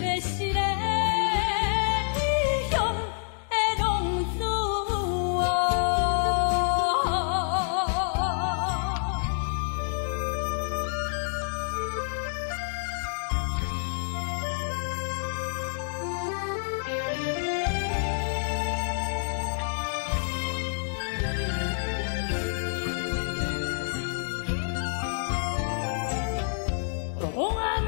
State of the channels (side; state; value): right; silent; digital silence